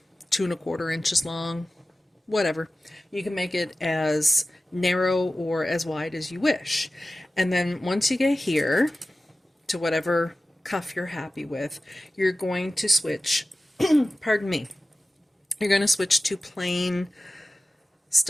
2¼ inches long, whatever. You can make it as narrow or as wide as you wish. And then once you get here to whatever cuff you're happy with, you're going to switch, pardon me, you're going to switch to plain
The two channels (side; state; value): both; normal; correlation 0.95